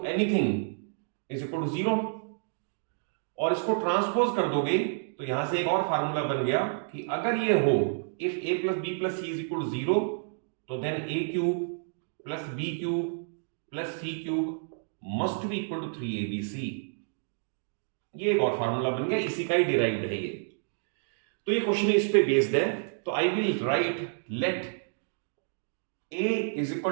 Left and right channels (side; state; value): left; silent; digital silence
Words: anything is equal to 0, और इसको ट्रांसपोज कर दोगे तो यहां से एक और फार्मूला बन गया कि अगर ये हो if a plus b plus c is equal to 0, तो then a cube plus b cube plus c cube must be equal to 3abc। ये एक और फार्मूला बन गया, इसी का ही डिराइव्ड है ये। तो ये क्वेश्चन इस पे बेस्ड है। तो I will right let a is